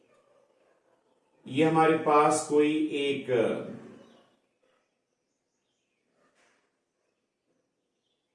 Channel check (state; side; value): identical; both; correlation 1.00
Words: ये हमारे पास कोई एक